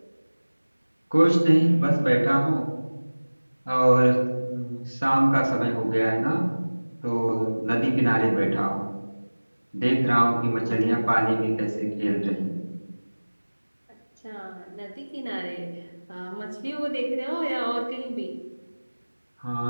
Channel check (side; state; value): both; inverted; correlation -1.00